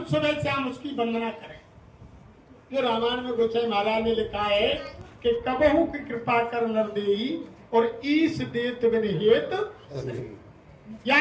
सुबह शाम उसकी वंदना करें। जो रामायण में गोसाई महाराज ने लिखा है कि कबहू की कृपा कर नर देई और ईश देत बिन हेत,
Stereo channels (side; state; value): both; identical; correlation 1.00